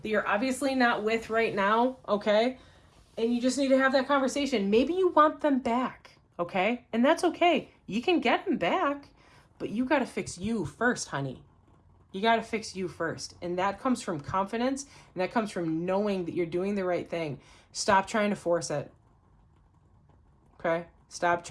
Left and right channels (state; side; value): identical; both; correlation 1.00